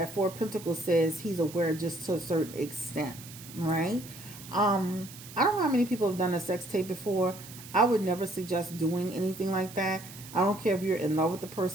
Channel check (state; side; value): noise; right; hiss, 16 dB below the sound